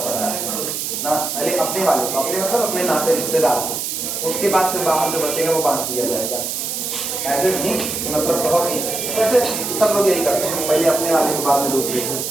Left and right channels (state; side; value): noise; right; hiss, 3 dB below the sound